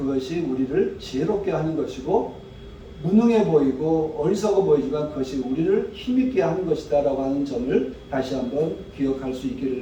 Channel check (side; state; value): both; identical; correlation 1.00